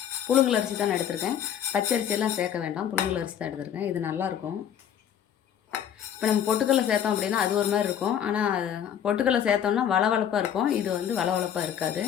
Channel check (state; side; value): quieter; right; 9.3 dB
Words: புழுங்கல் அரிசி தான் எடுத்திருக்கேன், பச்சை அரிசியெல்லாம் சேர்க்க வேண்டாம். புழுங்கல் அரிசி தான் எடுத்திருக்கேன். இது நல்லாயிருக்கும். இப்போ நம்ம பொட்டுக்கடலை சேர்த்தோம் அப்படின்னா அது ஒரு மாதிரி இருக்கும். ஆனால் பொட்டுக்கடலை சேர்த்தோம்னா வளவளப்பாக இருக்கும். இது வந்து வளவளப்பாக இருக்காது.